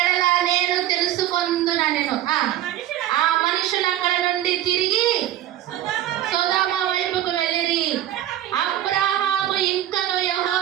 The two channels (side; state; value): left; quieter; 12.7 dB